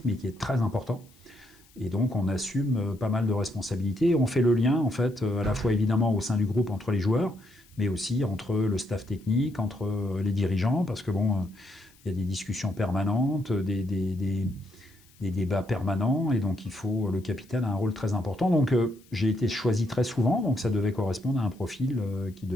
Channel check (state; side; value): noise; left; hiss, 29 dB below the sound